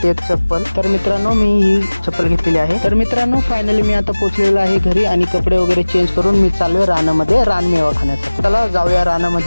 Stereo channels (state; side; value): inverted; both; correlation -1.00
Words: एक चप्पल. तर मित्रांनो, मी ही चप्पल घेतलेली आहे. तर मित्रांनो, फायनली मी आता पोहोचलेलो आहे घरी आणि कपडे वगैरे चेंज करून मी चाललोय रानामध्ये रानमेवा खाण्यासाठी. चला जाऊया